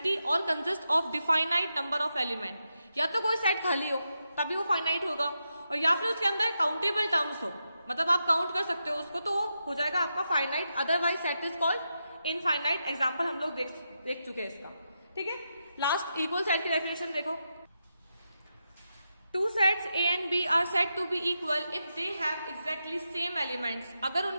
और consist of definite number of element. या तो कोई सेट खाली हो तभी वो फाइनाइट होगा, और या फिर उसके अंदर काउंटेबल टर्म्स हो, मतलब आप काउंट कर सकते हो उसको, तो वो हो जाएगा आपका finite. Otherwise set is called infinite. Example हम लोग देख चुके हैं इसका, ठीक है। लास्ट इक्वल सेट की डेफिनेशन देखो। Two sets A and B are said to be equal if they have exactly same elements। अगर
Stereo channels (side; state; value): both; inverted; correlation -0.86